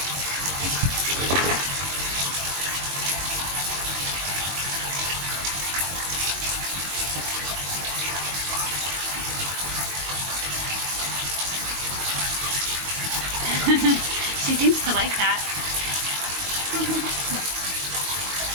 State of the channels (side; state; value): left; late; 22 ms